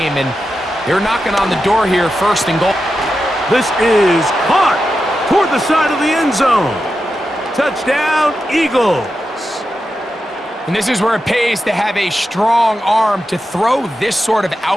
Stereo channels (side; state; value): both; normal; correlation 0.89